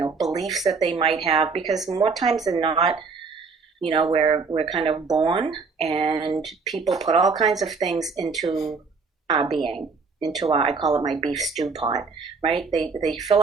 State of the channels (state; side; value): quieter; left; 4.7 dB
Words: beliefs that they might have, because more times than not, we're kind of born and people put all kinds of things into our being, into our, I call it my beef stew pot, right? They fill